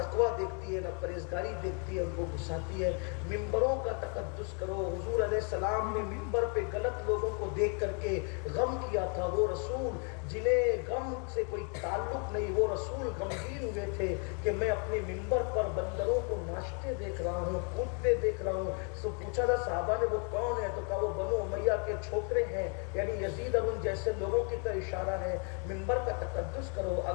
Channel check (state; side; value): quieter; right; 38.4 dB